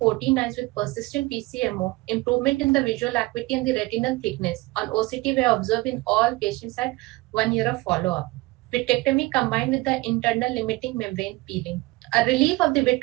eyes with persistent PCMO, improvement in the visual acuity and the retinal thickness on OCT were observed in all patients at 1 year of follow-up. Vitrectomy combined with the internal limiting membrane peeling. A relief of the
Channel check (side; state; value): left; quieter; 21.3 dB